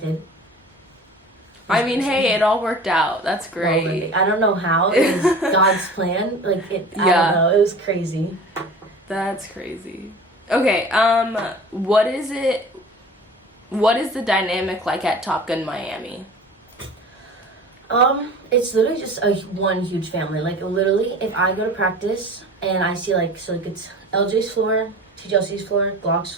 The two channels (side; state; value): both; normal; correlation 0.39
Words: I mean, hey, it all worked out. That's great. Well, I don't know how. It was God's plan. Like, I don't know. It was crazy. That's crazy. Okay, what is the dynamic like at Topun Miami? It's literally just one huge family. Like, literally, if I go to practice and I see, like, so, like, it's LJ's floor, TJLC's floor, Glock's